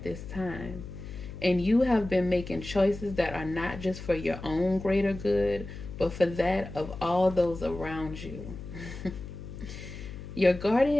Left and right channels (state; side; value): noise; left; hum, 11 dB below the sound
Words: this time. And you have been making choices that are not just for your own greater good, but for that of all those around you. Your